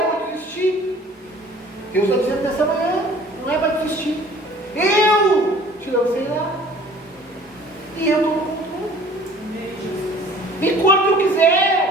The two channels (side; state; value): both; normal; correlation 0.50